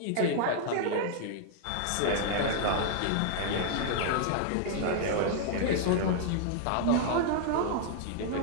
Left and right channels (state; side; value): different; both; correlation 0.00